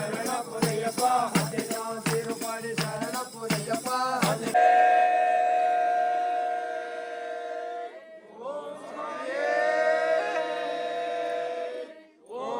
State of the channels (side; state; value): both; identical; correlation 1.00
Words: ಪುನಯ್ಯಪ್ಪ ತಿರುಪಡಿ ಶರಣ ಪುನಯ್ಯಪ್ಪ